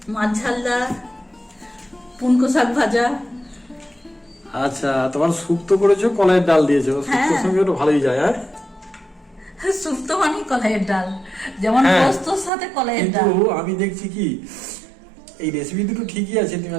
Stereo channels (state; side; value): drops out; left; at 12.5 s